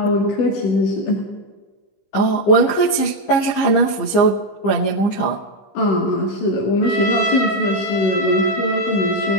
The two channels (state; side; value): late; right; 15 ms